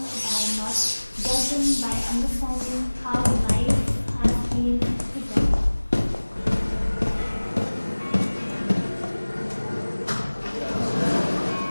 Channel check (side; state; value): both; inverted; correlation -1.00